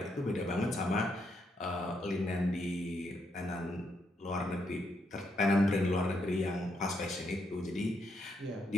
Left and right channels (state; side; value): normal; both; correlation 0.78